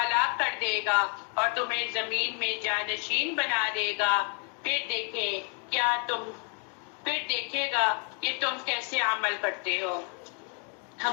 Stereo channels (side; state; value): right; quieter; 39.2 dB